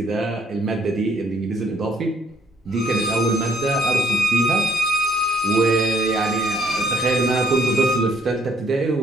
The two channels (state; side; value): normal; both; correlation 0.66